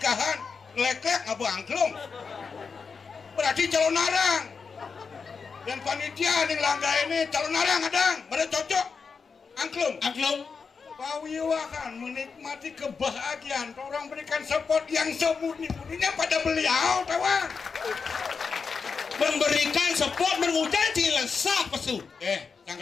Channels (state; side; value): quieter; right; 5.3 dB